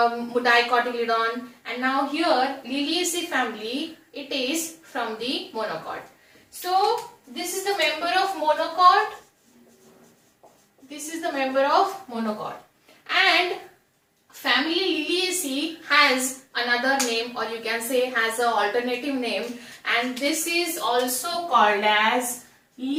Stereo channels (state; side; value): identical; both; correlation 1.00